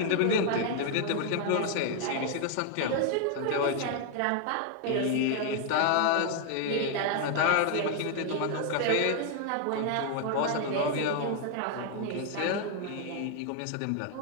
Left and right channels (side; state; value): both; different; correlation 0.00